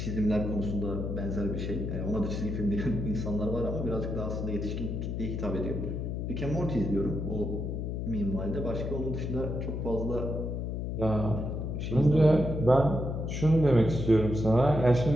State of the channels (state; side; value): noise; left; hum, 3 dB below the sound